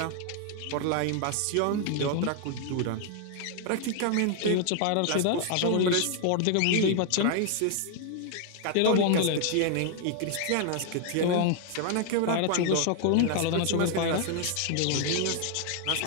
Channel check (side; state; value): both; different; correlation 0.00